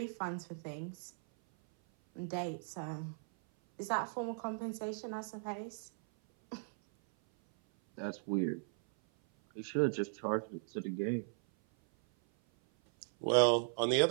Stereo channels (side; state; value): left; silent; 53 dB below the other